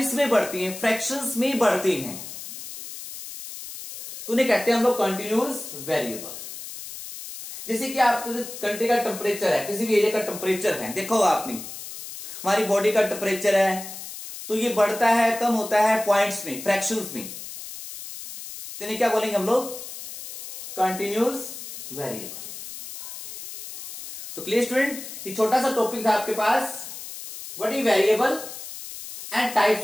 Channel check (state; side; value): noise; left; hiss, 11 dB below the sound